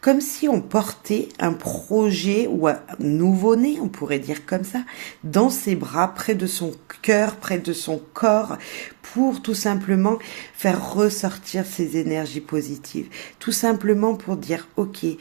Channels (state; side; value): quieter; left; 38.6 dB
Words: Comme si on portait un projet ou un nouveau-né, on pourrait dire comme ça, dans ses bras, près de son cœur, près de son corps, pour tout simplement faire ressortir ses énergies positives. Tout simplement pour dire, ok,